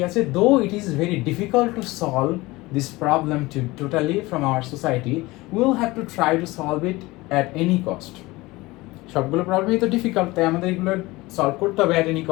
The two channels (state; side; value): quieter; right; 20.9 dB